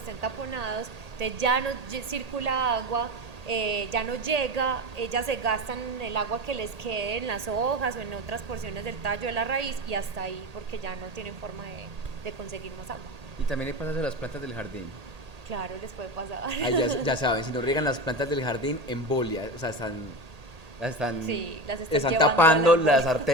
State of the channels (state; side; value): late; left; 1.8 ms